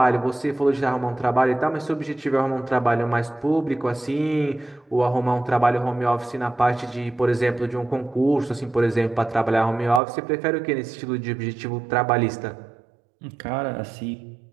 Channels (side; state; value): left; drops out; at 10.0 s